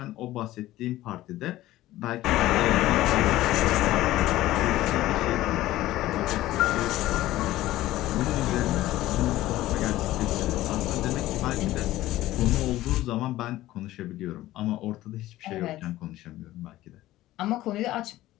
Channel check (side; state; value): right; quieter; 15.8 dB